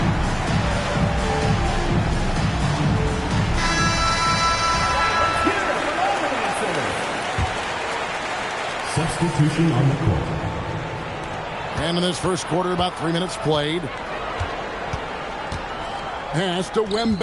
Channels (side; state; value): both; identical; correlation 1.00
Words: Substitution on the court. And in this first quarter, about 3 minutes played. Pass to